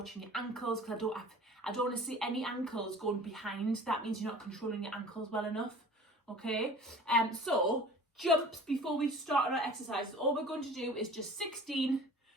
your ankles, because I don't want to see any ankles going behind. That means you're not controlling your ankles well enough, okay? So jumps before we start on our exercises. All we're going to do is just 16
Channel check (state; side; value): normal; both; correlation 0.43